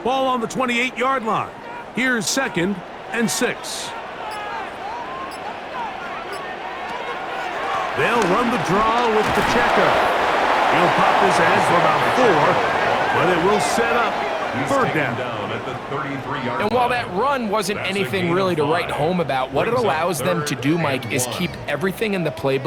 Ball on the 28-yard line. Here's 2nd and 6. They'll run the draw with Pacheco. He'll pop his head for about 4, but it will set up 3rd down. At the 33-yard And while that run wasn't anything really to write home about, what it allows them to do, Mike, is keep everything in the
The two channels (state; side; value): identical; both; correlation 1.00